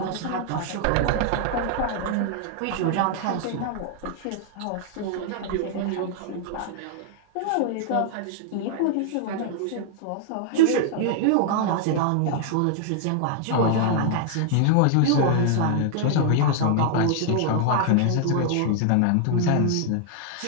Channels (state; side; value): different; both; correlation 0.00